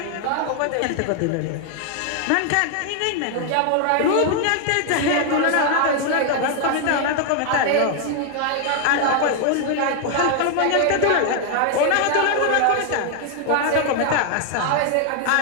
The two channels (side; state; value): both; different; correlation 0.00